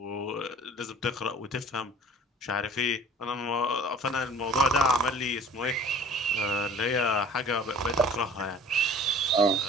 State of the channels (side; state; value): both; normal; correlation 0.48